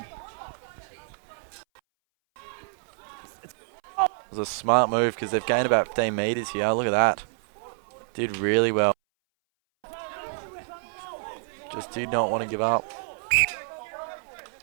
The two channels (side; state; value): left; silent; 59 dB below the other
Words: It was a smart move because they've gained about 15 metres here. Look at that. Did really well. Just did not want to give up.